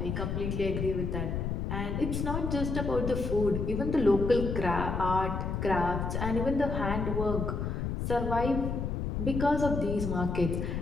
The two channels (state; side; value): noise; left; rumble, 2 dB below the sound